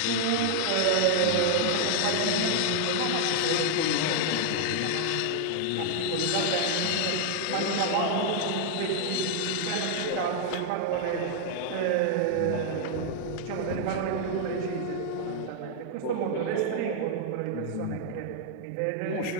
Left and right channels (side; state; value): both; different; correlation -0.01